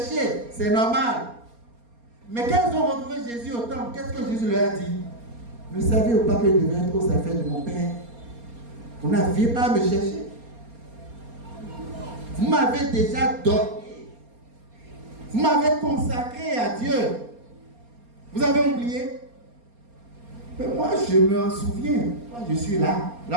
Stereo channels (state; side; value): late; left; 4.3 ms